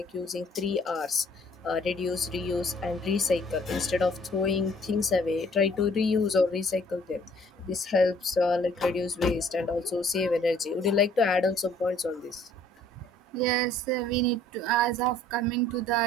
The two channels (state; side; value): normal; both; correlation 0.58